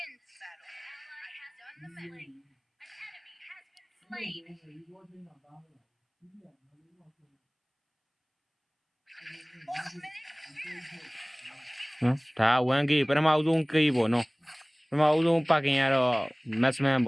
this battle. Ally has done the slain. An enemy has been slain. နော်ဒါ 1K ပထမဦးဆုံး K ပေါ့နော်ပထမဦးဆုံးပါကင်ကတော့ maximum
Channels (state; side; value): identical; both; correlation 1.00